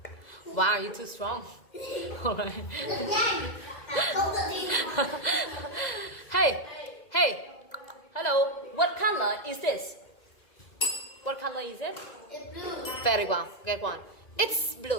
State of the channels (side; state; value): right; late; 2.0 ms